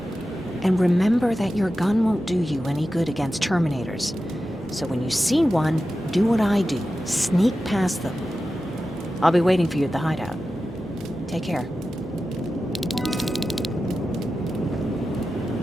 And remember that your gun won't do you any good against Terminators. So when you see one, do what I do. Sneak past them. I'll be waiting for you at the hideout. Take care.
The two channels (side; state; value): both; normal; correlation 0.93